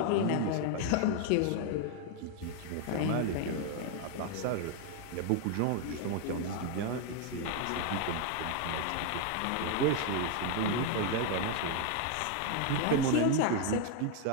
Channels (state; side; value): different; both; correlation 0.00